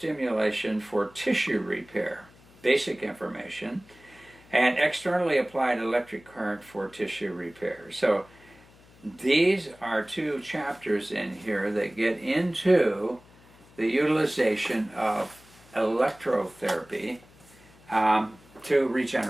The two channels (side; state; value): left; noise; hum, 26 dB below the sound